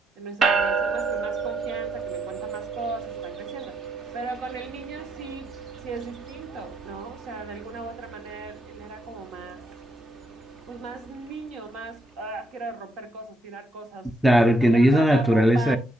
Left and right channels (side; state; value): both; normal; correlation 0.78